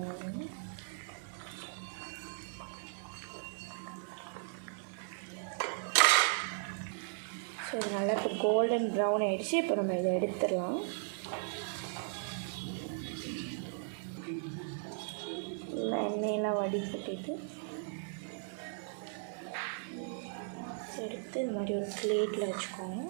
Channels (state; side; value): silent; left; 53 dB below the other